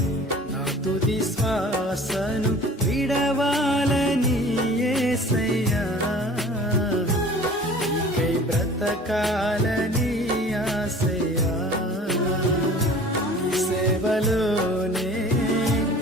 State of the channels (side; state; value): both; normal; correlation 0.45